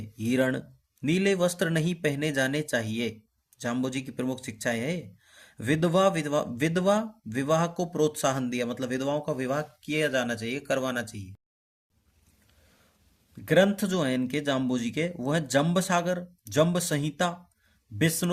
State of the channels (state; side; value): identical; both; correlation 1.00